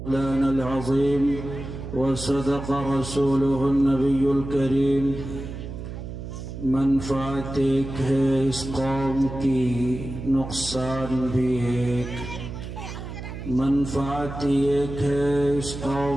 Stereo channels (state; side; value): noise; right; hum, 9 dB below the sound